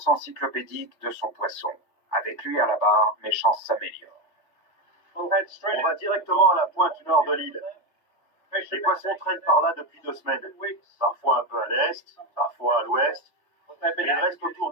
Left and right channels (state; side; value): late; right; 3.3 ms